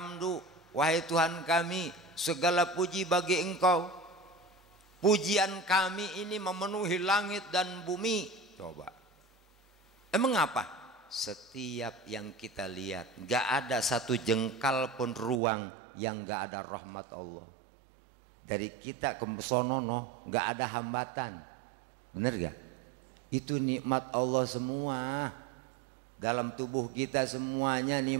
wahai Tuhan kami, segala puji bagi Engkau. Pujian kami ini memenuhi langit dan bumi. Coba, emang apa? Setiap yang kita lihat, gak ada satu jengkal pun ruang yang gak ada rahmat Allah. Dari kita ke sonono gak ada hambatan, bener gak? Itu nikmat Allah semua. Dalam tubuh kita semuanya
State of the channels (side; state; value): left; drops out; at 15.4 s